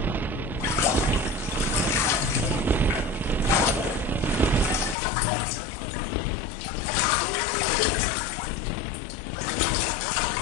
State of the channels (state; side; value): drops out; right; at 5.0 s